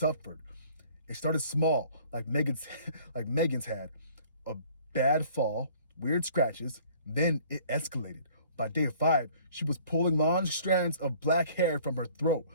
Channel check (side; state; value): both; inverted; correlation -0.53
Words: It started small, like Megan's had. A bad fall, weird scratches, then it escalated. By day 5, she was pulling long strands of black hair from her throat,